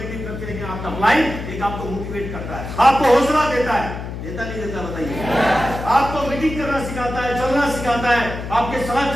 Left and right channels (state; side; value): noise; left; hum, 8 dB below the sound